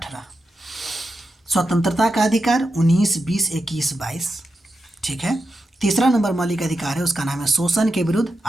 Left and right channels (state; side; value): normal; both; correlation 0.88